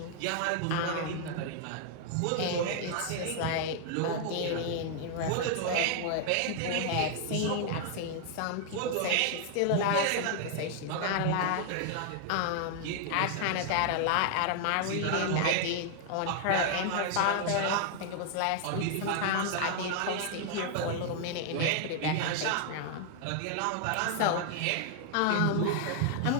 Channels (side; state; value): both; different; correlation 0.00